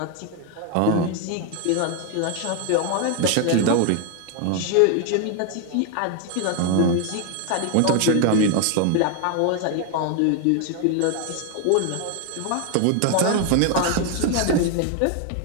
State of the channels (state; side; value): different; both; correlation 0.01